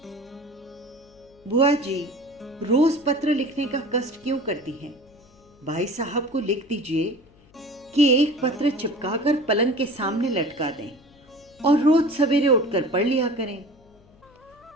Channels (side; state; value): left; noise; hum, 28 dB below the sound